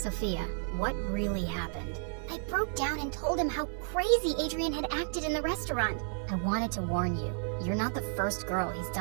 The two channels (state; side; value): silent; left; digital silence